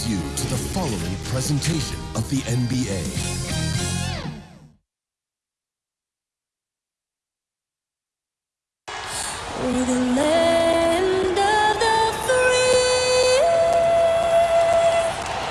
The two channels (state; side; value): identical; both; correlation 1.00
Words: you to the following presentation of the NBA. We're the land of the free